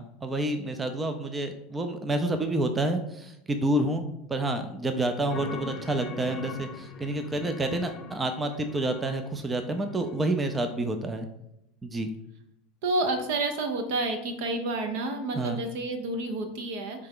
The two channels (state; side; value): normal; both; correlation 0.43